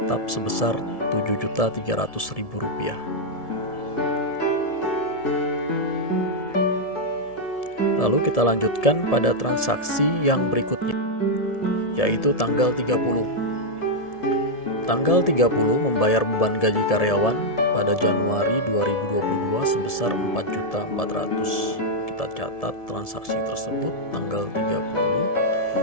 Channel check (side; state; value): right; late; 1.7 ms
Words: sebesar 7.300.000 rupiah. Lalu kita lanjutkan pada transaksi yang berikutnya, yaitu tanggal 30. Tanggal 30 membayar beban gaji karyawan pada Januari 2022 sebesar 4.400.000. Kita catat transaksi tersebut tanggal